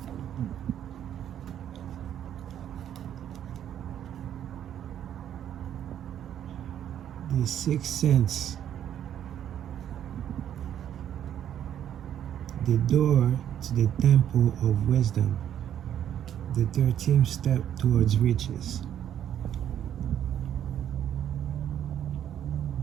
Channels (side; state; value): left; quieter; 10.2 dB